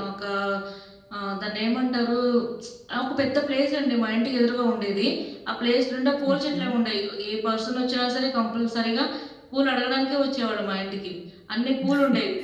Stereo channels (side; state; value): both; identical; correlation 1.00